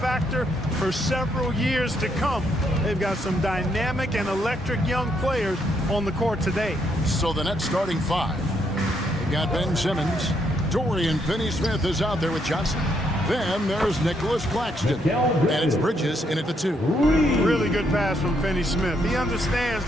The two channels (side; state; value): both; normal; correlation 0.75